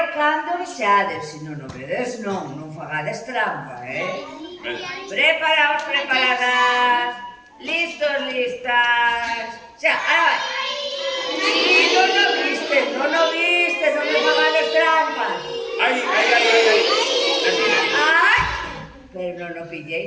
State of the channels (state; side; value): identical; both; correlation 1.00